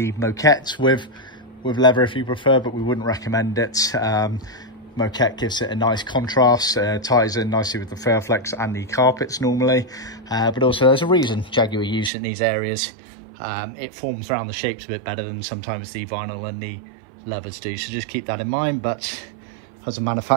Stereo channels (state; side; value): drops out; left; at 12.1 s